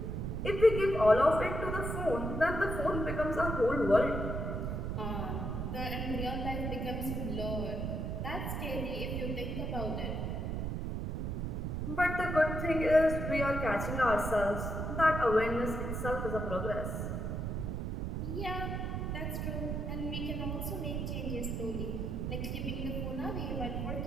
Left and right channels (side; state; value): right; noise; rumble, 2 dB below the sound